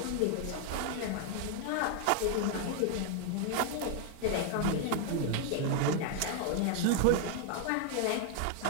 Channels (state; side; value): different; both; correlation 0.00